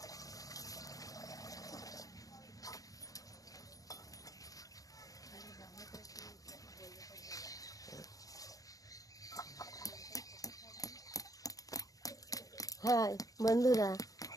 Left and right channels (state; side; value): late; right; 0.17 ms